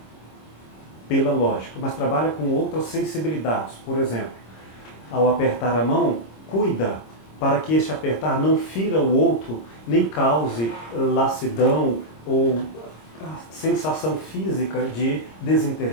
pela lógica, mas trabalha com outras sensibilidades. Por exemplo, ao apertar a mão, cuida para que este apertar não fira o outro, nem cause lassidão ou sensação física de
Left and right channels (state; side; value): late; right; 26 ms